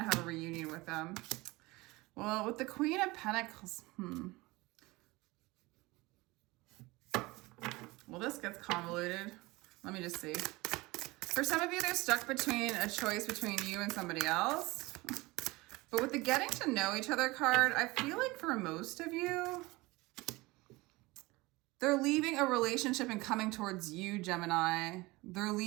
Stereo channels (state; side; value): quieter; left; 22.0 dB